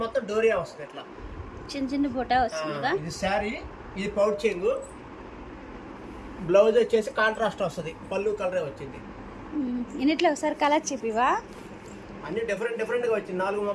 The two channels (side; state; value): both; identical; correlation 1.00